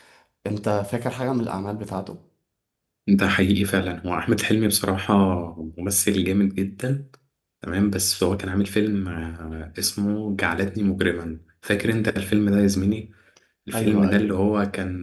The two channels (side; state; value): both; identical; correlation 1.00